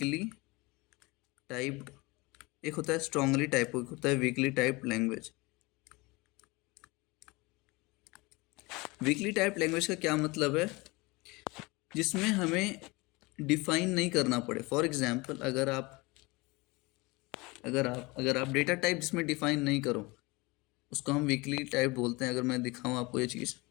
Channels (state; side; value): quieter; right; 24.4 dB